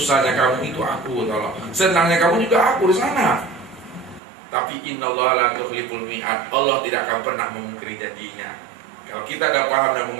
kamu itu aku, tolong. Senangnya kamu juga aku di sana. Tapi innallaha la tukhliful mi'ad. Allah tidak akan pernah memungkiri janjinya. Kalau kita dah paham dan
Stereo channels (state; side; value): drops out; left; at 4.2 s